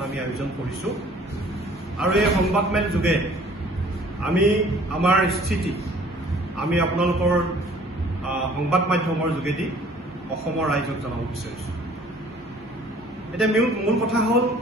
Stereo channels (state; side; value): normal; both; correlation 0.53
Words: আমি আয়োজন কৰিছো। আৰু এই সংবাদমেল যোগে আমি আমাৰ স্থিতি আমি আপোনালোকৰ সংবাদ মাধ্যমৰ যোগেদি অসমৰ ৰাইজক জনাব বিচাৰিছো। এতিয়া মূল কথা হ'ল,